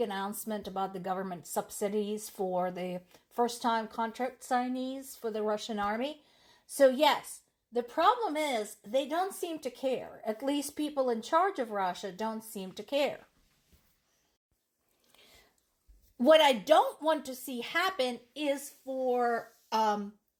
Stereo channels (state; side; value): identical; both; correlation 1.00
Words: about the government subsidies for the first time contract signees for the Russian army. So, yes, the problem is they don't seem to care. At least people in charge of Russia don't seem to care. What I don't want to see happen is for